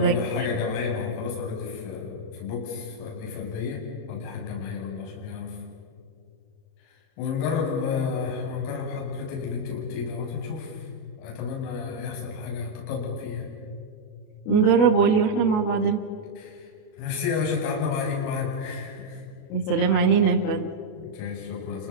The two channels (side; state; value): right; late; 37 ms